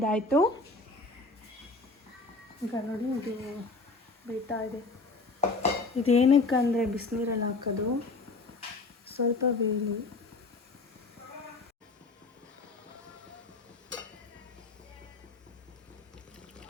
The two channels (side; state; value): right; quieter; 3.5 dB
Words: ಈಗ ನೋಡಿ ಇದು ಬೇಯ್ತಾ ಇದೆ. ಇದೇನಕ್ಕಂದರೆ ಬಿಸಿನೀರಲ್ಲಿ ಹಾಕೋದು, ಸ್ವಲ್ಪ ಬೇಯಲಿ.